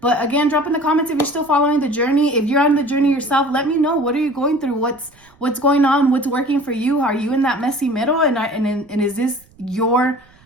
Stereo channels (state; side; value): noise; right; rumble, 29 dB below the sound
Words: again, drop in the comments if you're still following the journey. If you're on the journey yourself, let me know. What are you going through? What's going on? What's working for you? Are you in that messy middle? And is this your